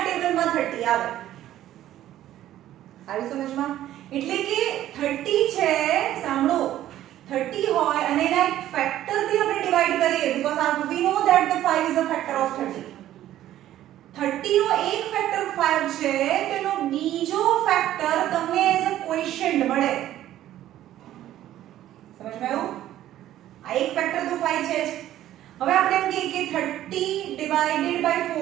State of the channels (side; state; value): left; quieter; 13.0 dB